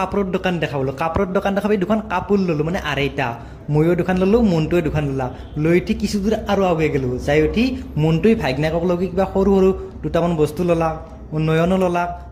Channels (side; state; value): both; identical; correlation 1.00